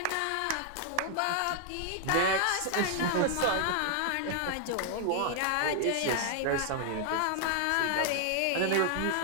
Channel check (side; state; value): both; different; correlation 0.00